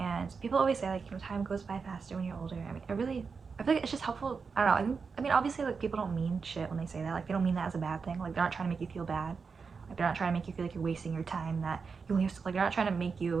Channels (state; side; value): quieter; left; 5.2 dB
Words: people always say like, time goes by faster when you're older. I feel like it's just helpful. I don't know. Obviously, like people don't mean shit when they say that. Like they don't mean that as a bad thing. Like they're not trying to make you feel bad. Like they're not trying to make you feel like you're wasting your time. That you only have to, like they're not trying to make